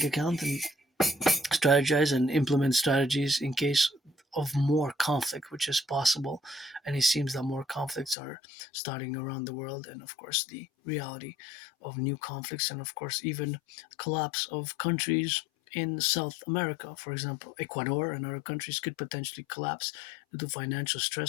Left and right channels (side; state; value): right; drops out; at 8.2 s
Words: account and strategize and implement strategies in case of more conflict, which is possible. And it seems that more conflicts are starting around the world. And of course, the reality of new conflicts, and of course, even collapse of countries in South America, for example, Ecuador and other countries could potentially collapse due to financial